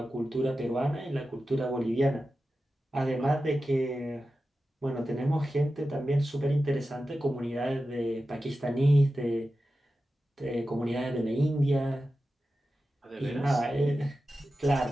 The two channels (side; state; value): both; normal; correlation 0.93